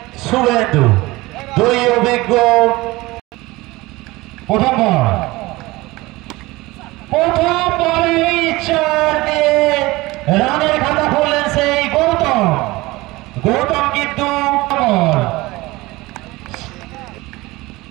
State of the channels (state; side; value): quieter; left; 20.7 dB